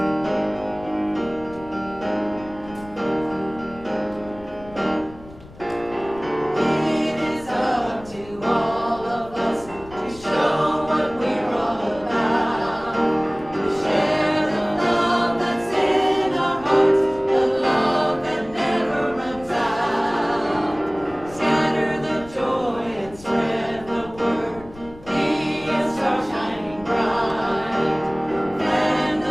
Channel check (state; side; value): noise; left; rumble, 20 dB below the sound